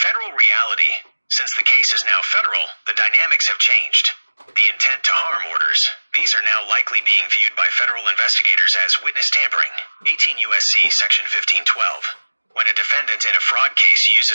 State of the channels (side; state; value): both; inverted; correlation -1.00